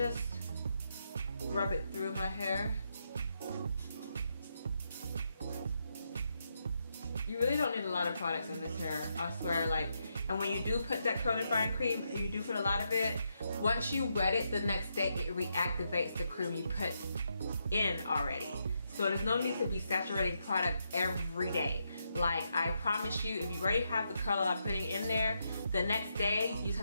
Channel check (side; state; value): both; inverted; correlation -0.81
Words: rub it through my hair. You really don't need a lot of products in this hair, I swear. Like, and when you do put that curl defying cream, and you do put a lot of it, once you wet it the next day, it reactivates the cream you put in already. So there's no need to be saturating product every day. Like, I promise you, if you already have the curl I'm putting in there, the next day you just